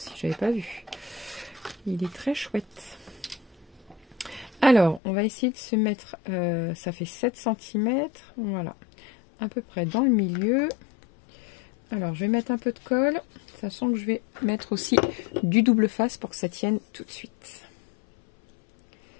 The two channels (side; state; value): right; drops out; at 5.0 s